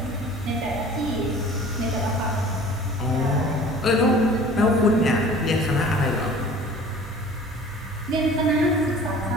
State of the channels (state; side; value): normal; both; correlation 0.46